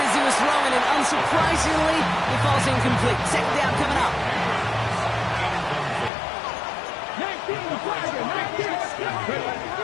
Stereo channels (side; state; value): right; drops out; at 6.1 s